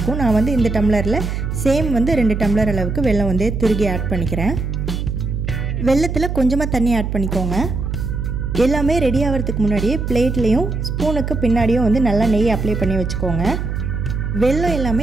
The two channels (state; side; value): noise; right; hum, 3 dB below the sound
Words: நான் இந்த டம்ளரில் சேம் 2 டம்ளர் அளவுக்கு வெல்லம் துருகி ஆட் பண்ணிக்கிறேன். வெல்லத்தில் கொஞ்சமாக தண்ணி ஆட் பண்ணிக்கோங்க. எல்லாமே ரெடி ஆகிறதுக்கு முன்னாடியே பிளேட்லேயும் ஸ்பூனுக்கு பின்னாடியும் நல்லா நெய் அப்ளை பண்ணி வச்சுக்கோங்க. வெல்லம்